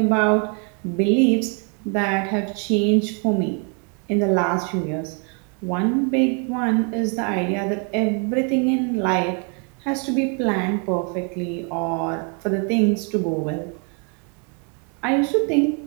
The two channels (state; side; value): quieter; left; 37.9 dB